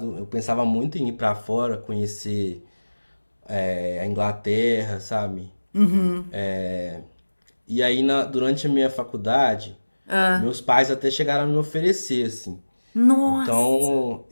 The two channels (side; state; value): both; inverted; correlation -1.00